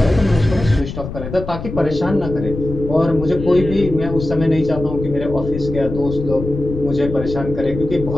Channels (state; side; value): noise; left; rumble, 8 dB below the sound